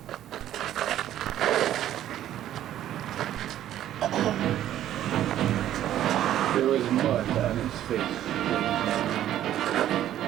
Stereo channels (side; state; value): left; quieter; 12.1 dB